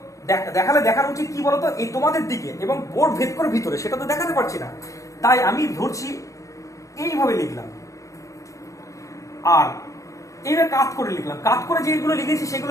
দেখালে দেখানো উচিত কি বলতো, এই তোমাদের দিকে এবং বোর্ড ভেদ করে ভিতরে, সেটা তো দেখাতে পারছি না, তাই আমি ধরছি এইভাবে লিখলাম। আর এইভাবে কাত করে লিখলাম, কাত করে যেগুলো লিখেছি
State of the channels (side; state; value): right; late; 0.15 ms